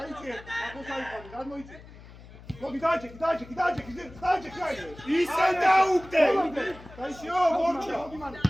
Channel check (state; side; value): noise; left; hum, 19 dB below the sound